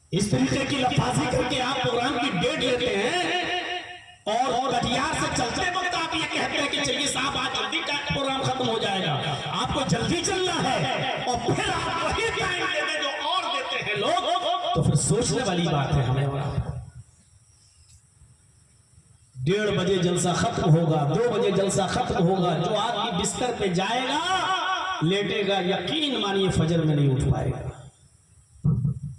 इस तरीके की लफाजी करके आप प्रोग्राम की डेट लेते हैं और कटियार से चलते वक्त आप ये कहते हैं कि चलिए साहब आज जल्दी का प्रोग्राम खत्म हो जाएगा। आपको जल्दी चलना है और फिर आप वही टाइम देते जो और देते हैं लोग, तो फिर सोचने वाली बात है। हमें 1:30 बजे जलसा खत्म होगा, 2 बजे जलसा खत्म होगा। जो आदमी बिस्तर पे जाएगा लेटेगा, यकीन मानिए फजर में नहीं उठ पाएगा।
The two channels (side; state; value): both; identical; correlation 1.00